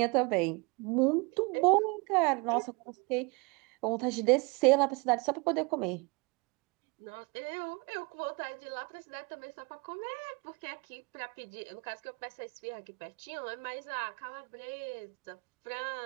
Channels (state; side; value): quieter; left; 29.2 dB